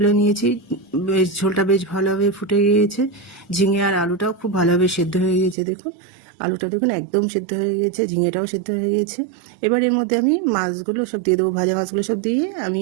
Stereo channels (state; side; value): drops out; left; at 5.6 s